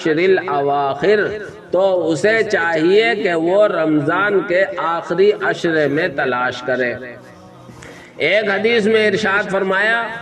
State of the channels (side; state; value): both; identical; correlation 1.00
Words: الْأَوَاخِرِ، تو اسے چاہیے کہ وہ رمضان کے آخری عشرے میں تلاش کرے۔ ایک حدیث میں ارشاد فرمایا،